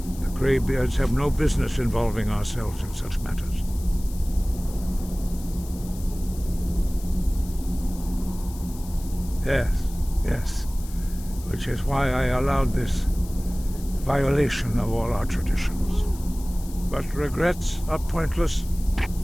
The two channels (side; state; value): left; noise; hiss, 18 dB below the sound